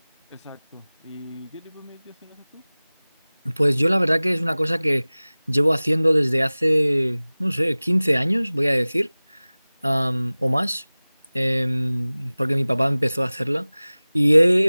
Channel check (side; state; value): both; inverted; correlation -0.99